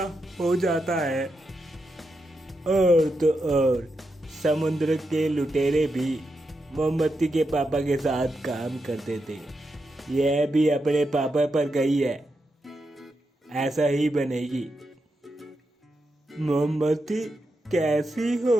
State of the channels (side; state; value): both; normal; correlation 0.86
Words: हो जाता है। और तो और समुद्र के लुटेरे भी मोमबत्ती के पापा के साथ काम करते थे। यह भी अपने पापा पर गई है, ऐसा ही बनेगी। मोमबत्ती कैसी हो?